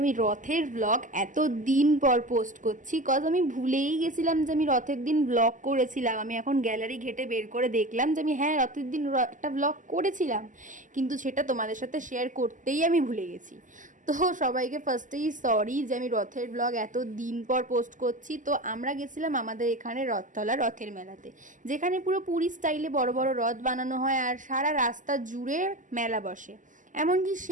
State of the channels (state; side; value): late; left; 0.37 ms